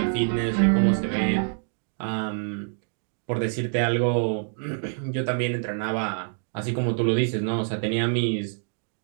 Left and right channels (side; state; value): left; silent; 61 dB below the other